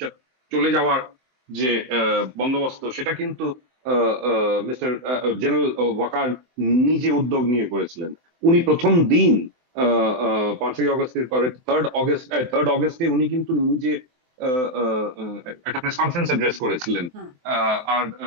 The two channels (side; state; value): left; late; 23 ms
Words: চলে যাওয়ার যে বন্দোবস্ত, সেটা কিন্তু মিস্টার জেনারেল ওয়াকার নিজে উদ্যোগ নিয়ে করেছিলেন। উনি প্রথম দিন 5ই অগস্টের পরে 3rd অগস্টে উনি কিন্তু নিজে একটা প্রেস কনফারেন্স অ্যাড্রেস করেছিলেন, আর